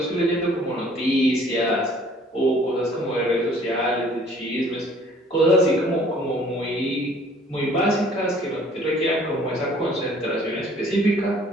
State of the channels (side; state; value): both; normal; correlation 0.56